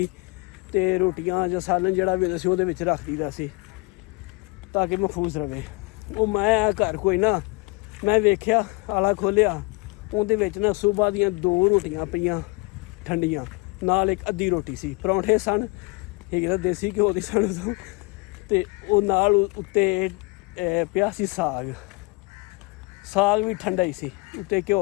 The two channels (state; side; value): quieter; right; 27.2 dB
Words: ਤੇ ਰੋਟੀਆਂ ਜਾਂ ਸਾਲਨ ਜਿਹੜਾ ਵੀ ਹੁੰਦਾ ਸੀ ਉਹਦੇ ਵਿੱਚ ਰੱਖ ਦਈਦਾ ਸੀ ਤਾਂ ਕਿ ਮਹਿਫੂਜ਼ ਰਵੇ। ਉਹ ਮੈਂ ਘਰ ਕੋਈ ਨਾ, ਮੈਂ ਵੇਖਿਆ ਆਲਾ ਖੋਲ੍ਹਿਆ, ਉਹਦੇ ਵਿੱਚ ਨਾ ਸੁਬਾਹ ਦੀਆਂ 2 ਰੋਟੀਆਂ ਪਈਆਂ ਠੰਡੀਆਂ, ਨਾਲ ਇੱਕ ਅੱਧੀ ਰੋਟੀ ਸੀ। ਪਰੌਂਠੇ ਸਨ ਹੈਗੇ ਤਾਂ ਦੇਸੀ ਘਿਓ ਦੀ ਸਨ ਉਦੋਂ, ਅਤੇ ਉਹ ਨਾਲ ਉੱਤੇ ਪਿਆ ਸੀ ਸਾਗ ਵੀ ਠੰਡਾ ਹੀ ਸੀ, ਉੱਤੇ